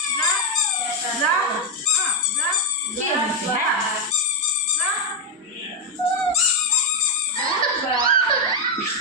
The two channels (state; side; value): normal; both; correlation 0.04